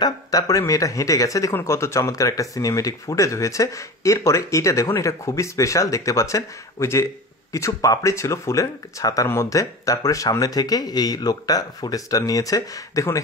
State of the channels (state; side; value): normal; both; correlation 0.31